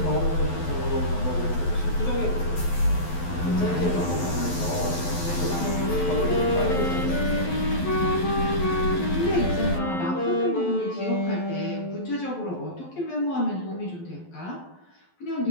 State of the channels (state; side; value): late; right; 11 ms